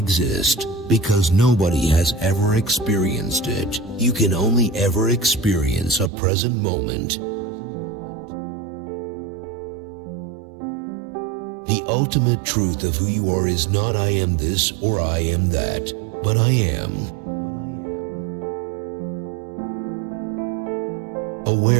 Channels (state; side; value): drops out; left; at 6.1 s